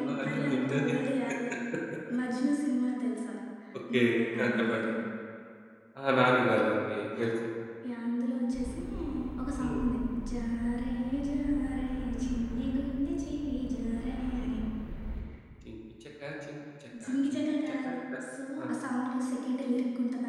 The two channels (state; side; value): identical; both; correlation 1.00